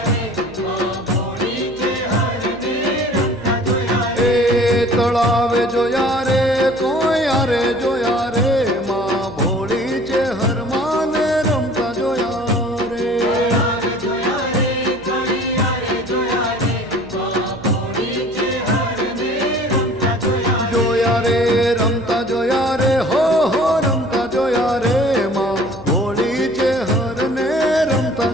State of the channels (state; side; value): noise; right; hum, 20 dB below the sound